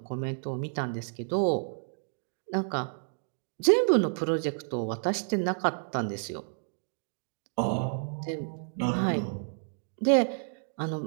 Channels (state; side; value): silent; left; digital silence